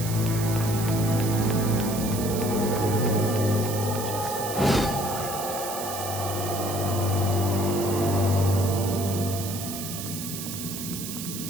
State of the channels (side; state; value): right; noise; hiss, 7 dB below the sound